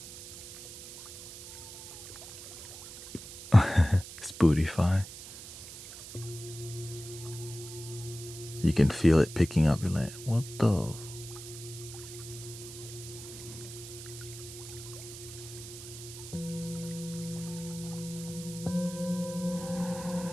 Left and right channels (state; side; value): noise; right; hiss, 13 dB below the sound